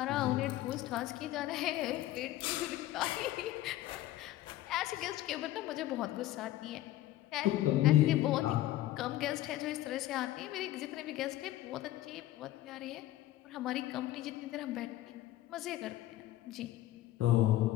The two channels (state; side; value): quieter; right; 15.0 dB